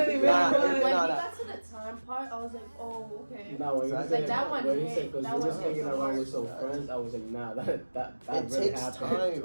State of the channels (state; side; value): inverted; both; correlation -1.00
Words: Nah, was. When we nah. got to the time part, I was like, oh, okay. No, when you Like, said that one when you hit. said because That we one was hit hanging so around hard. with some friends, I was like, nah, that It really takes happened. time.